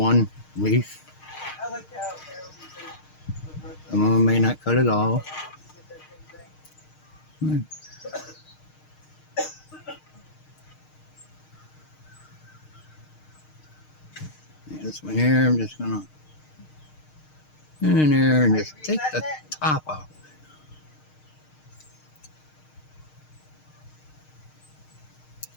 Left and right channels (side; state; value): right; late; 6.5 ms